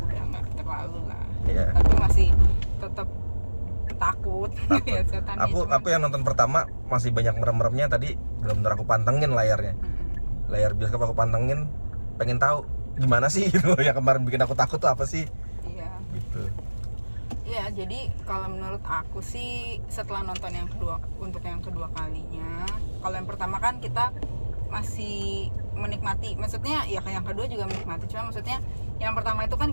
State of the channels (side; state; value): both; inverted; correlation -1.00